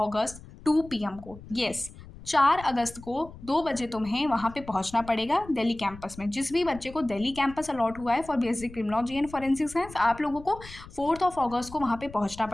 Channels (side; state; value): left; noise; rumble, 17 dB below the sound